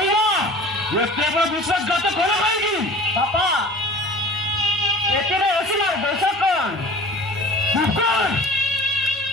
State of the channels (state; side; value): normal; both; correlation 0.42